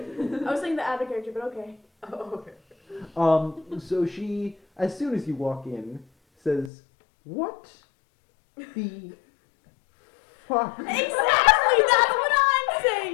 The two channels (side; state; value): right; drops out; at 6.7 s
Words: queen. I was saying the other character, but okay. Oh, okay. So she, as soon as you walk in, says, "What the fuck? Exactly, that's what I'm